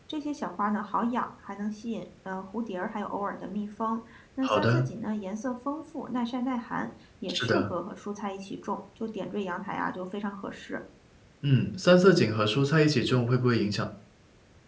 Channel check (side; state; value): both; identical; correlation 1.00